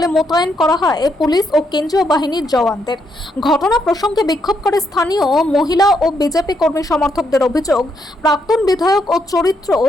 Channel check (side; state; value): both; normal; correlation 0.77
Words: মোতায়েন করা হয় পুলিশ ও কেন্দ্রীয় বাহিনীর জওয়ানদের। ঘটনা প্রসঙ্গে বিক্ষোভ করে স্থানীয় মহিলা ও বিজেপি কর্মী সমর্থকদের অভিযোগ, প্রাক্তন বিধায়ক ও চরিত্র